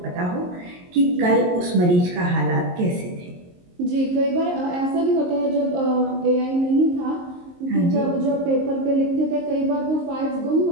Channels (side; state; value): left; late; 22 ms